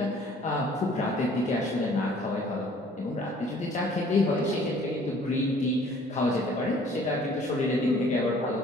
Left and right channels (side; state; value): both; normal; correlation 0.55